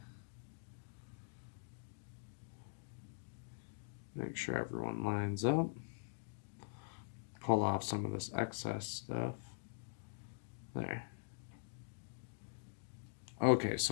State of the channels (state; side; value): silent; right; digital silence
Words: Make sure everyone lines up. Pull off some of this excess stuff. There. Okay,